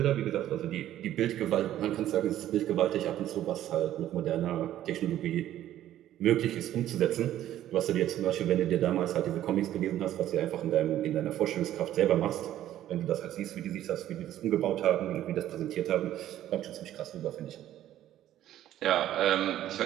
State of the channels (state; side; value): quieter; left; 12.5 dB